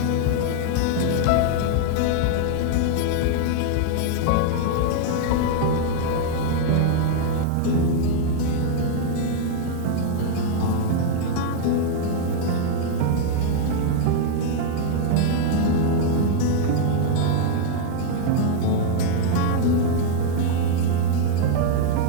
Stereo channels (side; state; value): both; different; correlation 0.00